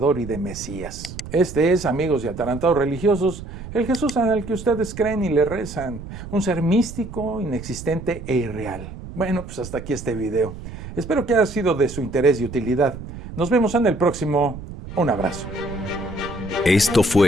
y de Mesías. Este es, amigos y atarantados religiosos, el Jesús al que ustedes creen y le rezan, un ser místico, inexistente e irreal. Bueno, pues hasta aquí este video. Espero que haya sido de su interés y utilidad. Nos vemos en el próximo. Un abrazo. Esto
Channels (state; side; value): noise; right; rumble, 11 dB below the sound